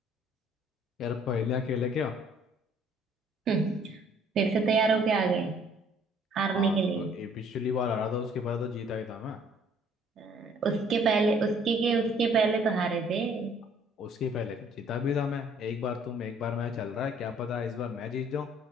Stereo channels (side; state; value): both; normal; correlation 0.59